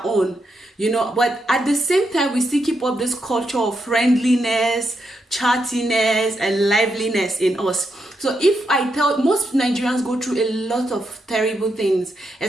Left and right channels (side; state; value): both; normal; correlation 0.82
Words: own, but at the same time we still keep up this culture of friendliness, chattiness, and liveliness in us. So if I tell, most Nigerians go through a lot of terrible things,